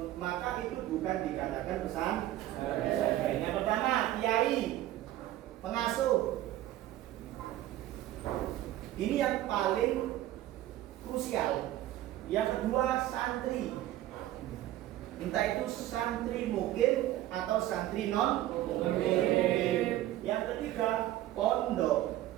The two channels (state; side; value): quieter; left; 14.3 dB